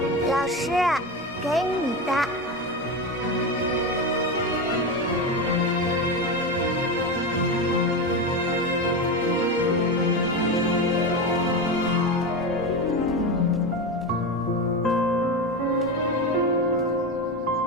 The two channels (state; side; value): normal; both; correlation 0.18